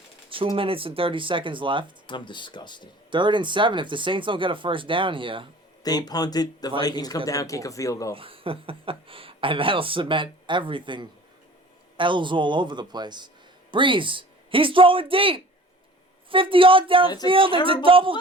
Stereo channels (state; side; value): normal; both; correlation 0.45